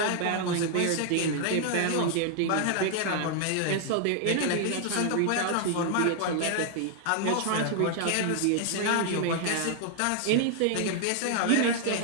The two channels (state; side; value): different; both; correlation 0.00